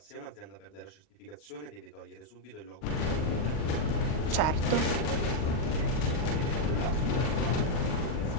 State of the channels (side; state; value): right; late; 39 ms